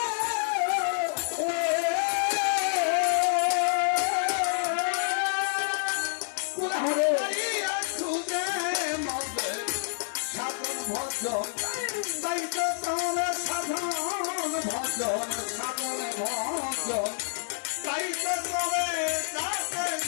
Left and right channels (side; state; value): right; silent; 59 dB below the other